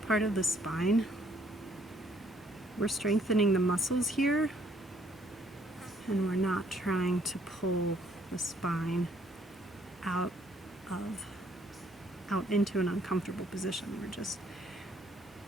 of the spine. We're strengthening the muscles here, and we're not trying to pull the spine out into an uncomfortable position. We're just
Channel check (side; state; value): both; normal; correlation 0.65